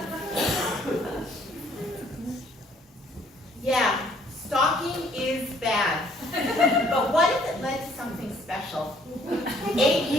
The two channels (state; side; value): normal; both; correlation 0.62